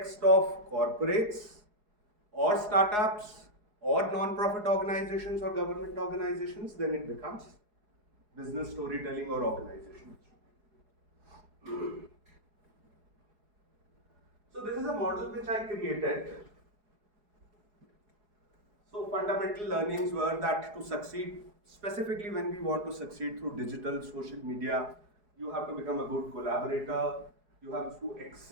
of corporates or startups or non-profit organizations or government organizations, then it becomes business storytelling or organization. So this is a model which I created. So fundamental learnings were that to succeed, specifically when we want to succeed through digital, social media, you have to become a good collaborator, you have to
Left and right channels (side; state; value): left; late; 4.8 ms